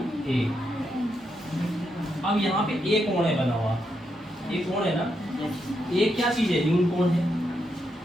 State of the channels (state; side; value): normal; both; correlation 0.81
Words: ए। अब यहाँ पे ए कोण है बना हुआ, ए कोण है ना, ए क्या चीज है न्यून कोण है।